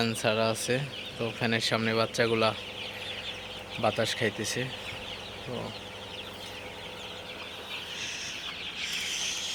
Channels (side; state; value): both; identical; correlation 1.00